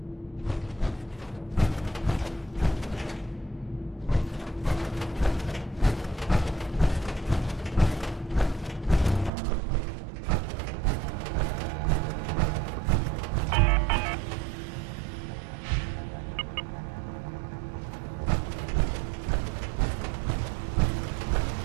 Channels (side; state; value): left; drops out; at 9.3 s